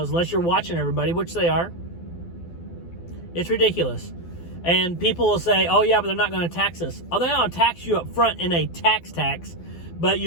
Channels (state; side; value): late; right; 12 ms